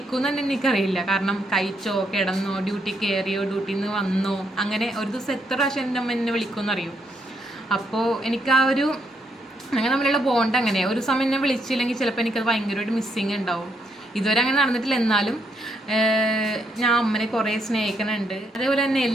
തന്നെ എനിക്കറിയില്ല. കാരണം കഴിച്ചോ, കിടന്നോ, ഡ്യൂട്ടി കയറിയോ, ഡ്യൂട്ടിയിൽ നിന്ന് വന്നോ, അങ്ങനെ ഒരു ദിവസം എത്ര പ്രാവശ്യം എൻ്റെ അമ്മ എന്നെ വിളിക്കുമെന്ന് അറിയും. അപ്പോൾ എനിക്ക് ആ ഒരു അങ്ങനെ നമ്മളുള്ള ബോണ്ട് അങ്ങനെ ഒരു സമയം എന്നെ വിളിച്ചില്ലെങ്കിൽ ചിലപ്പോൾ എനിക്കത് ഭയങ്കരമായിട്ട് മിസ്സിങ് ഉണ്ടാവും. ഇതുവരെ അങ്ങനെ നടന്നിട്ടില്ല. എന്നാലും ഞാൻ അമ്മനെ കുറേ സ്നേഹിക്കുന്നുണ്ട്. അതേപോലെ തന്നെ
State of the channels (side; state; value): both; normal; correlation 0.76